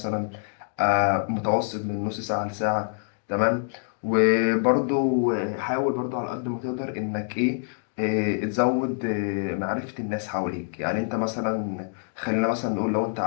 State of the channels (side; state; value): right; silent; digital silence